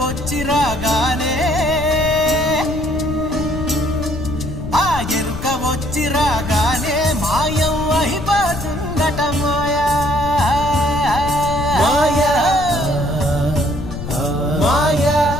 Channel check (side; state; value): left; noise; rumble, 8 dB below the sound